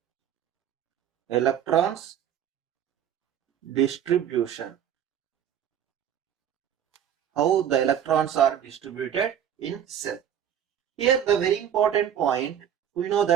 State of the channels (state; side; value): quieter; left; 9.5 dB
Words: Electrons distribution. How the electrons are distributed in cell. Here the very important point, we know